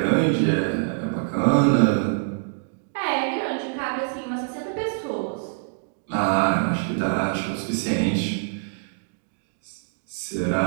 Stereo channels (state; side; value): silent; left; digital silence